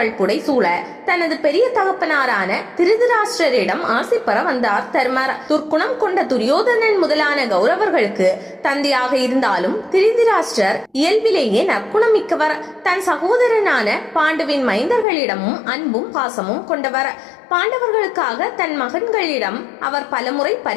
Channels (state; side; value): drops out; right; at 15.1 s